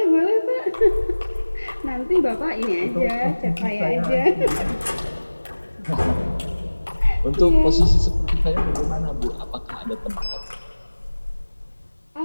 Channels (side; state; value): both; inverted; correlation -1.00